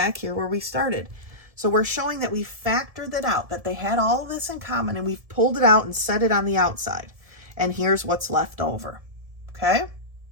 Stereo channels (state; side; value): late; left; 1.7 ms